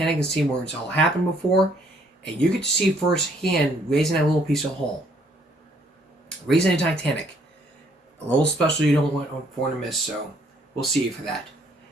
and see where it's all happened before, and you get to see firsthand raising that little piece of hull. Raising in Titanic. A little special you don't want to miss, so we'll see you for that.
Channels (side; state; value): both; normal; correlation 0.65